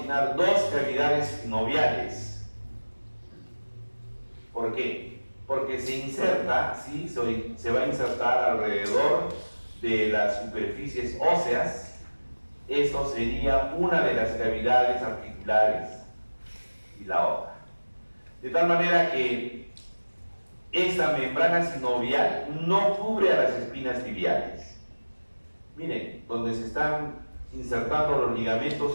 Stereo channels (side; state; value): both; inverted; correlation -1.00